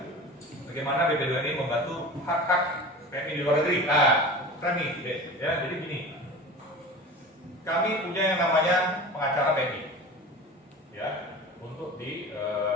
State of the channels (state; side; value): normal; both; correlation 0.35